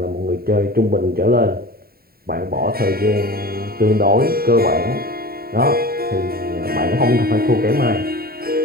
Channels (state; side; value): late; left; 0.44 ms